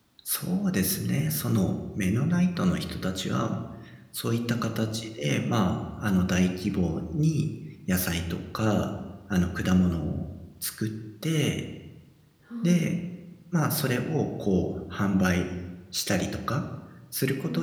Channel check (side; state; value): both; identical; correlation 1.00